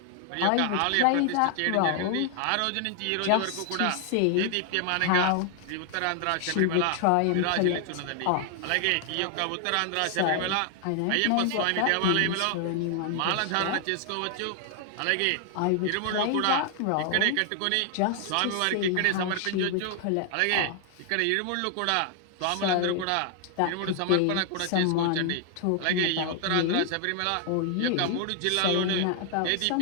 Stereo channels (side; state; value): both; different; correlation 0.00